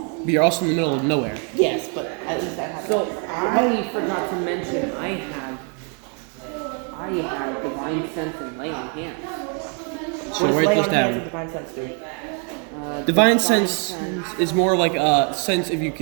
But you're also in the middle of nowhere. Yes, but at least I have. So I forgot to mention I have divine sense and lay on hands. So write those down. Divine sense do? Divine sense is more like a sense if you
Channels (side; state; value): left; quieter; 39.6 dB